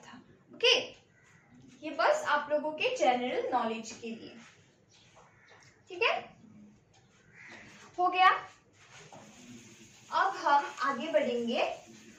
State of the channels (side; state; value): both; identical; correlation 1.00